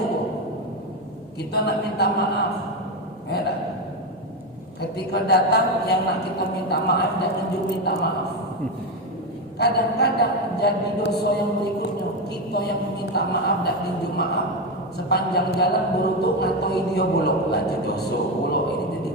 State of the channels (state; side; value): normal; both; correlation 0.12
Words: Kita nak minta maaf ya tak? Ketika datang yang nak kita minta maaf dan tunjuk minta maaf. Kadang-kadang jadi dosa yang berikutnya, kita yang minta maaf dan tunjuk maaf sepanjang jalan berutuk ngatoi dia buluk lah dosa buluk ini jadi